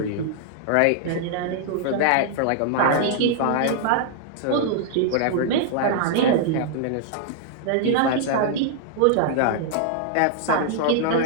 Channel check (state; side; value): different; both; correlation -0.01